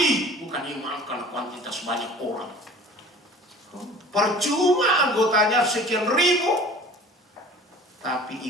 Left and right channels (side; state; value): both; normal; correlation 0.45